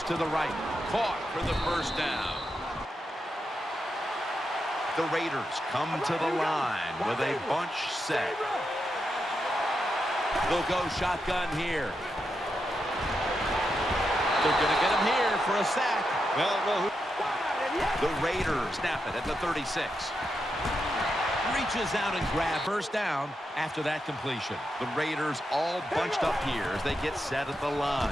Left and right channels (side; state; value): both; normal; correlation 0.85